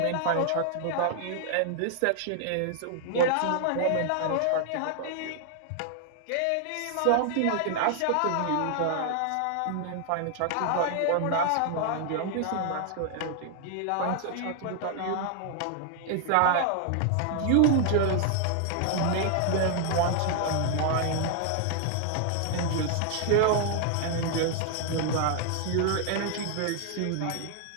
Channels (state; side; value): different; both; correlation 0.00